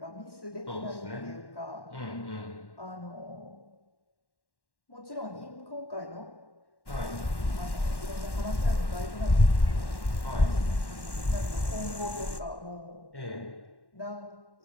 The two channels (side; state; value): right; late; 1.1 ms